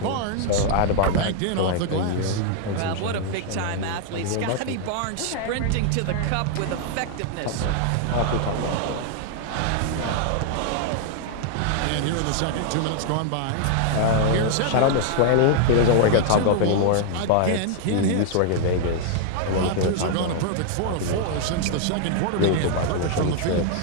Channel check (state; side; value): different; both; correlation -0.01